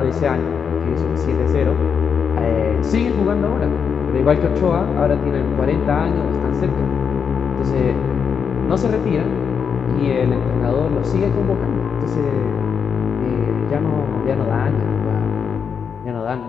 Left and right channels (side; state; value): right; quieter; 6.7 dB